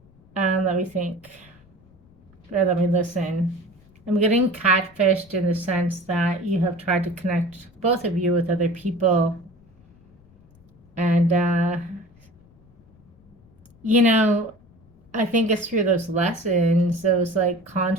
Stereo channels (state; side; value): noise; left; rumble, 28 dB below the sound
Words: Let me think. Or let me listen. I'm getting catfished in the sense that you have tried to connect, both of you, with other people. And, I think it's through those lessons, those like